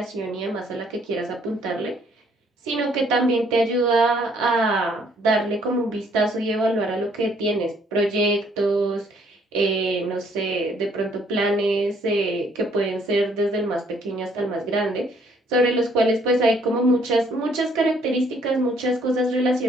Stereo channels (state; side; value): normal; both; correlation 0.64